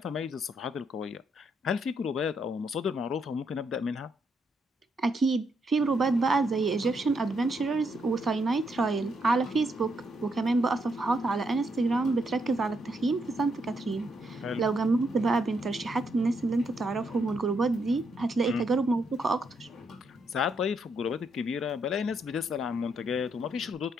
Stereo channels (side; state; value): both; normal; correlation 0.77